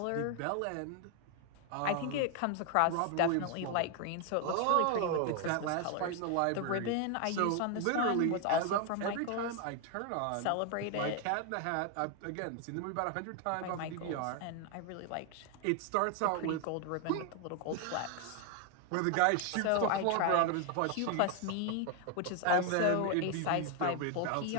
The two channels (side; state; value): both; different; correlation 0.00